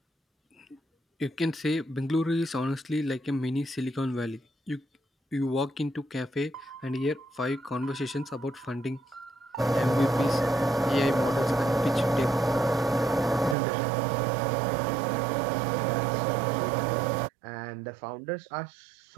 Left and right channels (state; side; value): drops out; left; at 13.6 s